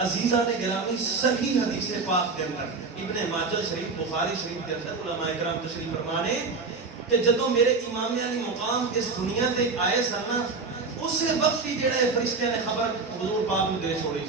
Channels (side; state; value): left; quieter; 4.3 dB